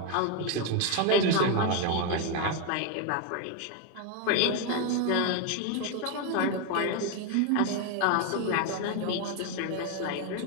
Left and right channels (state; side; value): different; both; correlation 0.01